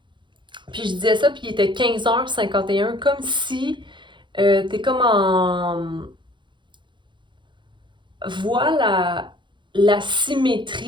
Puis je disais ça, puis il était 15h51, comme si t'es comme en... Voilà la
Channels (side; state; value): left; late; 0.23 ms